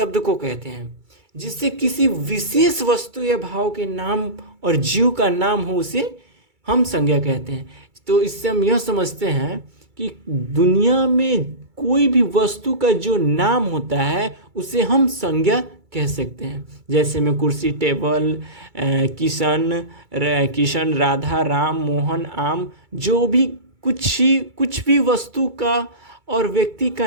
को कहते हैं जिससे किसी विशेष वस्तु या भाव के नाम और जीव का नाम हो, उसे हम संज्ञा कहते हैं। तो इससे हम यह समझते हैं कि दुनिया में कोई भी वस्तु का जो नाम होता है उसे हम संज्ञा कह सकते हैं। जैसे में कुर्सी, टेबल, किशन, राधा, राम, मोहन, आम, जो भी कुछ भी वस्तु का और व्यक्ति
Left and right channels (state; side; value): late; left; 2.3 ms